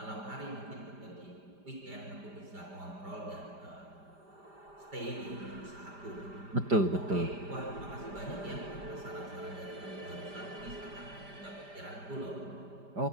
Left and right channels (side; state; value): left; late; 5.0 ms